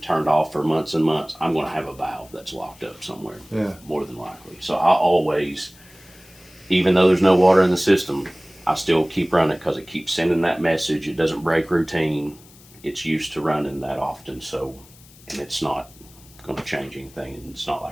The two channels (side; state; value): left; noise; hiss, 24 dB below the sound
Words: off for months and months, I'm going to have a valve that's locked up somewhere, more than likely. So I always, even though there's no water in the system, I still keep running because it keeps sending that message. It doesn't break routine. It's used to running that often, so, and it's not going to change anything, and it's not